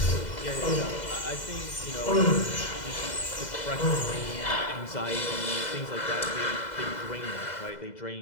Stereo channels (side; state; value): right; late; 2.0 ms